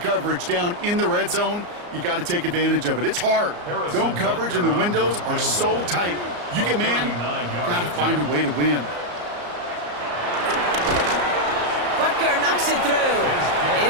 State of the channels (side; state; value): left; late; 34 ms